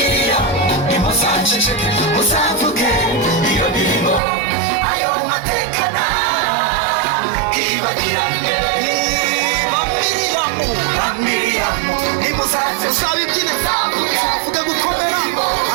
ntimuzaceceke, muzavuge iyo mirimo, ayo mateka ntibagirane. Bambwira ntimuzaceceke, muzavuge gukomera,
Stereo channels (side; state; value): left; drops out; at 4.2 s